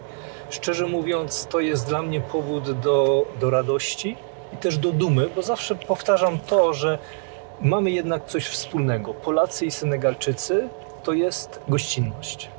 szczerze mówiąc to jest dla mnie powód do radości i też do dumy, bo zawsze powtarzam to, że mamy jednak coś wspólnego. Polacy i Senegalczycy to jest gościnność.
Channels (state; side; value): silent; left; 59 dB below the other